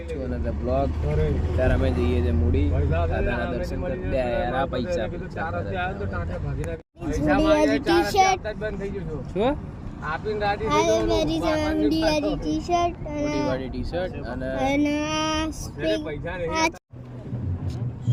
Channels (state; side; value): identical; both; correlation 1.00